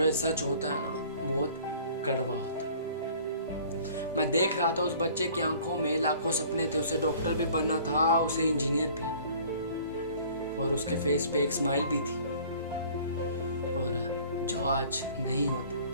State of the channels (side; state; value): both; inverted; correlation -0.51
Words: ये सच होता है ना बहुत कड़वा होता है। मैं देख रहा था उस बच्चे की आंखों में लाखों सपने थे। उसे डॉक्टर भी बनना था, उसे इंजीनियर भी, और उसके फेस पे एक स्माइल भी थी, और जो आज नहीं होती।